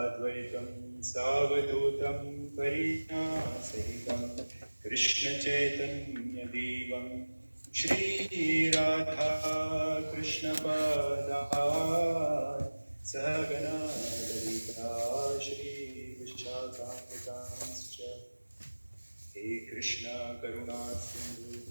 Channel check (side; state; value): both; inverted; correlation -1.00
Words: Savadutam Parina Sahitam Krishna Chaitanya Devam Shri Radha Krishna Pada Sahagana Lalita Shri Vishakhamitanscha He Krishna Karuna Sindhu